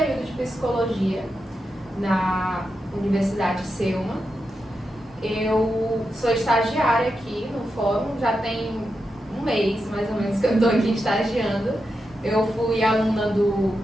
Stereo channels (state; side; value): normal; both; correlation 0.87